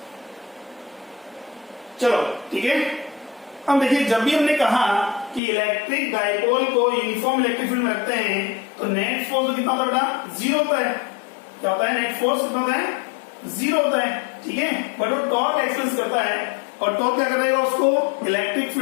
चलो ठीक है, अब देखिए जब भी हमने कहा कि इलेक्ट्रिक डायपोल को यूनिफॉर्म इलेक्ट्रिक फील्ड में रखते हैं तो नेट फोर्स कितना होता है बेटा, 0 होता है। क्या होता है, नेट फोर्स कितना होता है, 0 होता है। ठीक है, बट वो टॉर्क एक्सपेंस करता है और टॉर्क क्या कर देगा, उसको इलेक्ट्रिक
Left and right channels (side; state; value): right; drops out; at 5.4 s